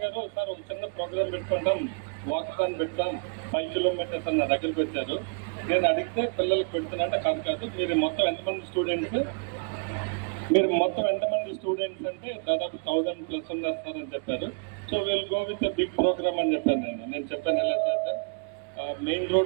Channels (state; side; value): quieter; left; 35.9 dB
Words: గారు సార్ ఒక చిన్న ప్రోగ్రామ్ పెట్టుకుంటాం, వాకథాన్ పెడతాం, 5 kilometers అన్న దగ్గరికి వచ్చారు. నేను అడిగితే పిల్లలకు పెడుతున్నట్టే కాదు, మీరు మొత్తం ఎంతమంది స్టూడెంట్స్ అంటే దాదాపు 1000+ ఉన్నారు సార్ అని చెప్పారు. So will go with big program అని చెప్పాను. నేను చెప్పాను ఎలా చేద్దాం, మెయిన్